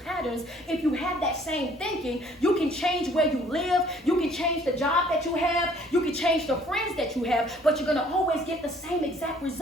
if you have that same thinking, you can change where you live, you can change the job that you have, you can change the friends that you have, but you're going to always get the same exact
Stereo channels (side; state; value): both; normal; correlation 0.58